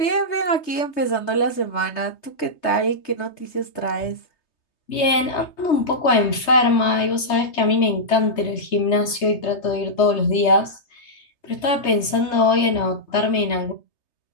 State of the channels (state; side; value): late; right; 3.3 ms